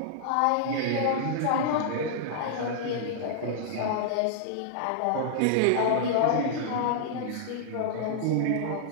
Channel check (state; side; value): different; both; correlation -0.01